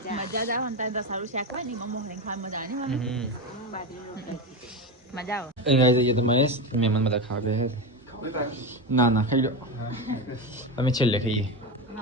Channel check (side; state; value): both; normal; correlation 0.17